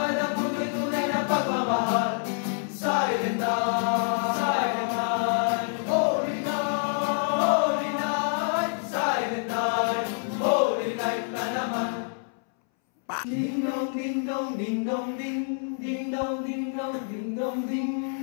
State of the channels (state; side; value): silent; right; 60 dB below the other